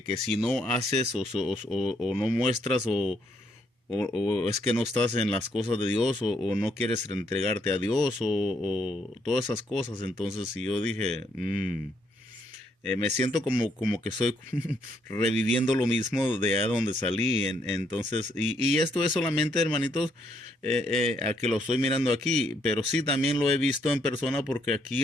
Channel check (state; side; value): normal; both; correlation 0.72